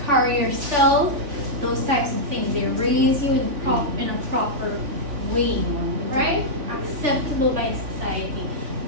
carry yourself, those types of things. They raise you in a proper way, right? Acceptable by society.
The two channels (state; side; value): late; left; 3.5 ms